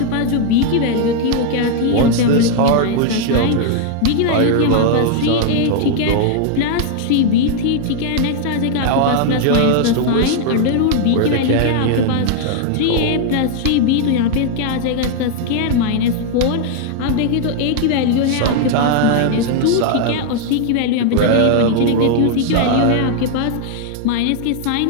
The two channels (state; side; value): different; both; correlation 0.00